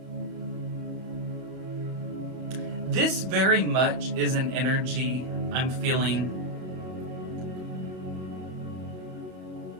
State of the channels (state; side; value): late; left; 31 ms